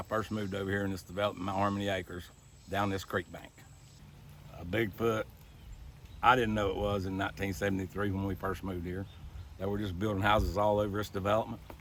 first moved over here in this development, Mount Harmony Acres, down this creek bank. A Bigfoot, I didn't know it was in 1973 when we first moved here. They were just building houses all over this development.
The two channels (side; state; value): both; identical; correlation 1.00